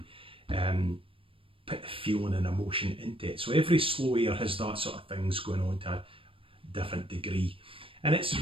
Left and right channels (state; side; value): late; left; 0.26 ms